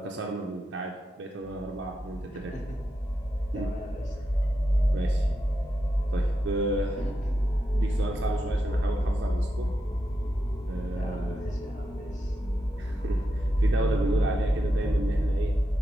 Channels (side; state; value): both; normal; correlation 0.86